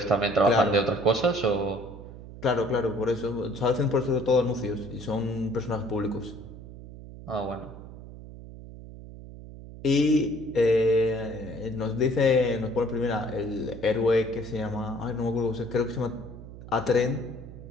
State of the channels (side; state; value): right; noise; hum, 14 dB below the sound